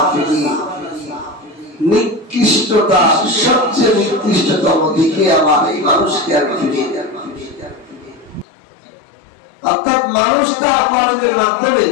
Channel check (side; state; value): right; drops out; at 8.5 s